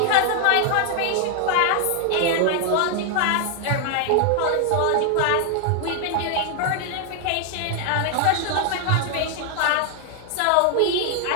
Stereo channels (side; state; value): both; different; correlation 0.00